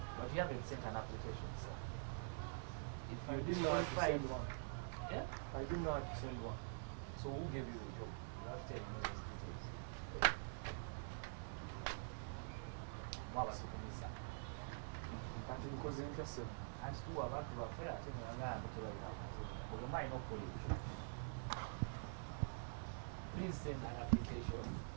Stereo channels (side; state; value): left; silent; digital silence